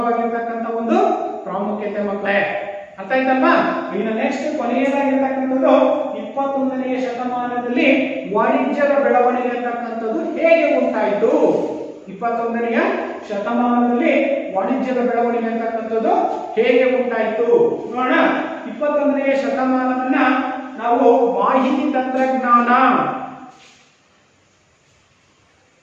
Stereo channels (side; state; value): both; identical; correlation 1.00